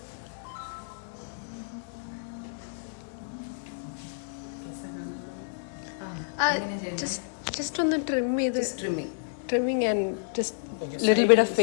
Just on the trimming and just little bit of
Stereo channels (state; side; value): silent; right; digital silence